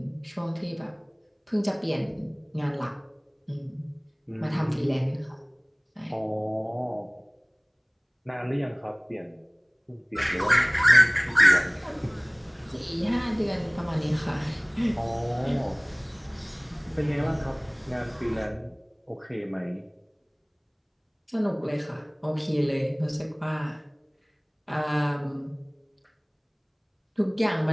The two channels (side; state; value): both; identical; correlation 1.00